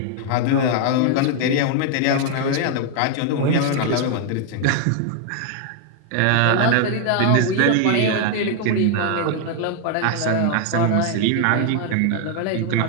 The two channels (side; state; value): both; different; correlation 0.00